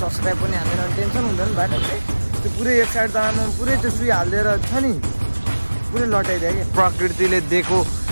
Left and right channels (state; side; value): inverted; both; correlation -1.00